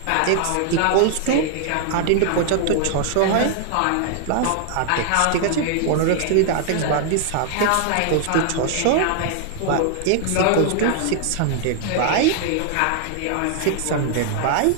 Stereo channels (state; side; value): different; both; correlation 0.00